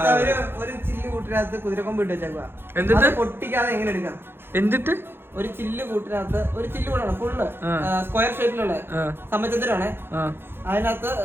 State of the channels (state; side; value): late; left; 0.11 ms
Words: ഒരു ചില്ല് കൂട്ടിനകത്ത് കുതിരക്കൊമ്പ് ഇട്ട് വെച്ചേക്കുക. എന്നിട്ട് പൊട്ടിക്കാതെ എങ്ങനെ എടുക്കാം? എന്നിട്ട് ഒരു ചില്ല് കൂട്ടിനകത്ത് ഒരു ചില്ല് കൂടാണ് ഫുള്ള് സ്ക്വയർ ഷേപ്പിലുള്ള സമചതുരാണ്. അതിനകത്ത്